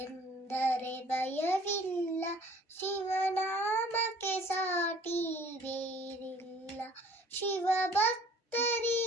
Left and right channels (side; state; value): both; normal; correlation 0.54